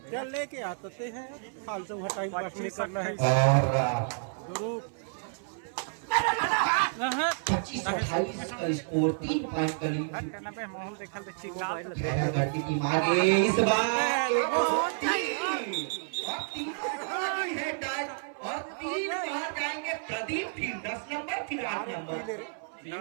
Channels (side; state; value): left; silent; 58 dB below the other